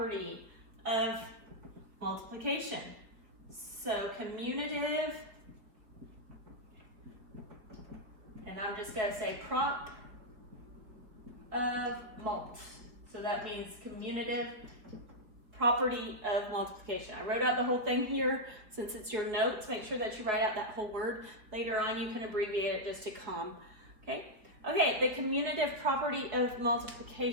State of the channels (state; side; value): late; left; 4.3 ms